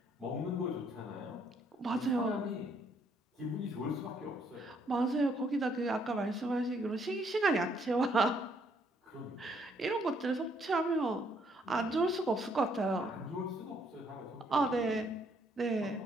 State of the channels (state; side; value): normal; both; correlation 0.69